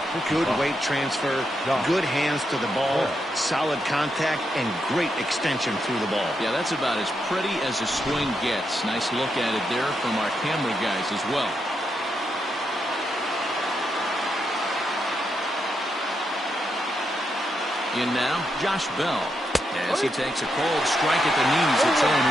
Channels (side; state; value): both; normal; correlation 0.82